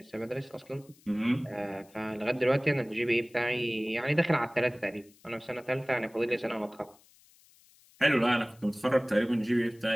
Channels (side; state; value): left; noise; hiss, 28 dB below the sound